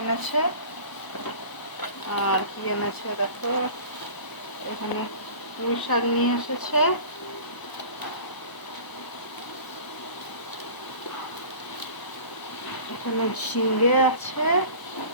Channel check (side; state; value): right; late; 1.0 ms